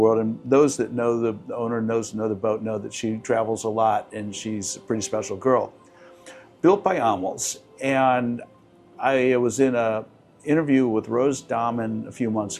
and those that know the owner, know the boat, know that she travels a lot, and she's a pretty special girl. Built by Amels, and I was in an interview with Rose Dahman a few months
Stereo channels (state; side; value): identical; both; correlation 1.00